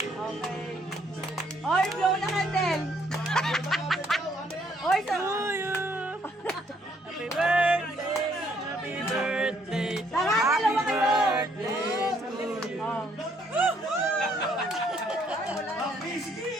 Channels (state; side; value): normal; both; correlation 0.68